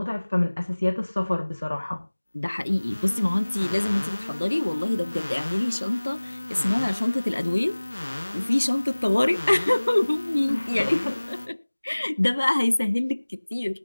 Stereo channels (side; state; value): both; inverted; correlation -1.00